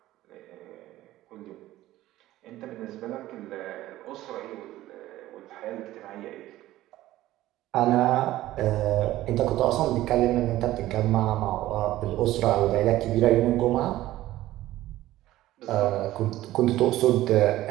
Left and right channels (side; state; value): left; quieter; 15.4 dB